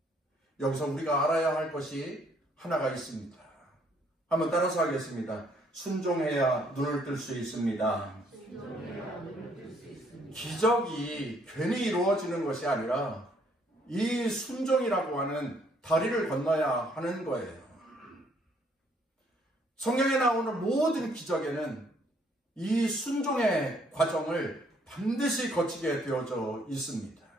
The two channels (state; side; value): normal; both; correlation 0.66